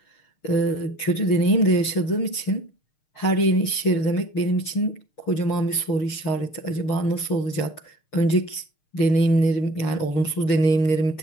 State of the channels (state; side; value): late; right; 6.5 ms